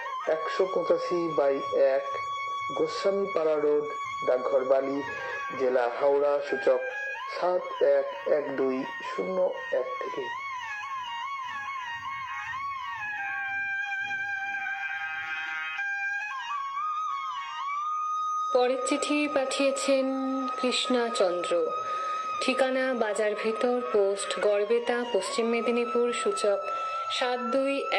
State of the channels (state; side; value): identical; both; correlation 1.00